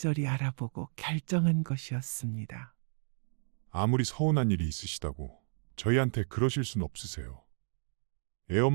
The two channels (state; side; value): silent; left; digital silence